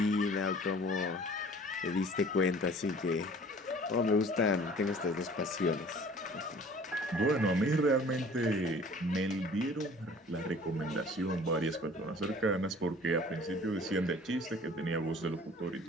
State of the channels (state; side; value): normal; both; correlation 0.49